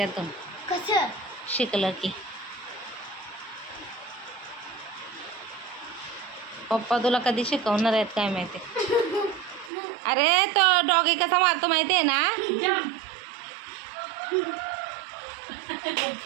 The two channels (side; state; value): left; drops out; at 9.7 s